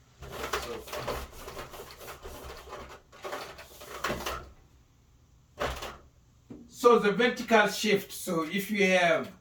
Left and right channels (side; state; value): both; identical; correlation 1.00